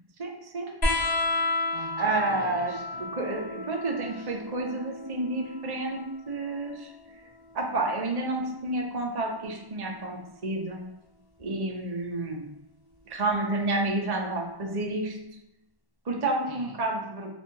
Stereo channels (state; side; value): late; left; 1.1 ms